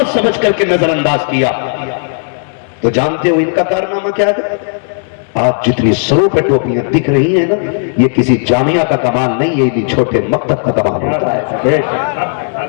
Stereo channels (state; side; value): silent; right; digital silence